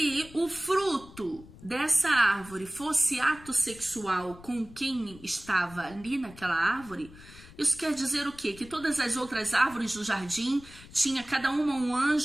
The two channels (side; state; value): left; noise; rumble, 20 dB below the sound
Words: o fruto dessa árvore fosse ato sexual com quem estava ali naquela árvore, isso quer dizer o quê? Que todas as outras árvores do jardim tinha cada uma um